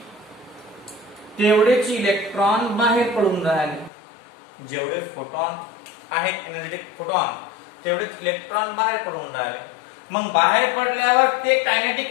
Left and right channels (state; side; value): drops out; right; at 3.9 s